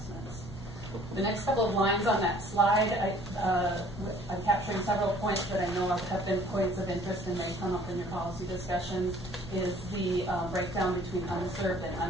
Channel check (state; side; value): normal; both; correlation 0.55